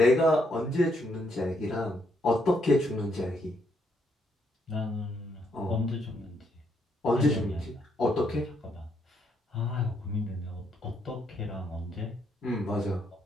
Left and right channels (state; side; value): normal; both; correlation 0.74